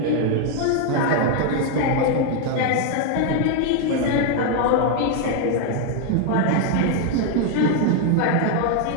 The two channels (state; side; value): different; both; correlation 0.00